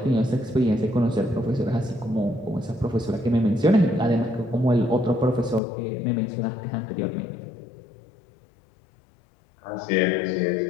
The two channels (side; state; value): right; drops out; at 5.6 s